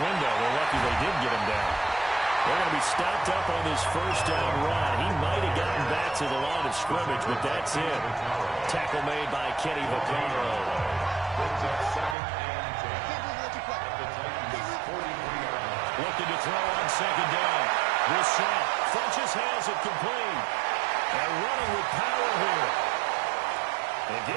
They're lucky they did get him down. They're going to be stopped up on this 1st down run. He might have gotten back to the line of scrimmage, but that's it. Tackle made by Kenny Vaccaro. Looking to throw on 2nd down. Brissett. Funchess has it complete. And running with power here. They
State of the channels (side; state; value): left; drops out; at 12.2 s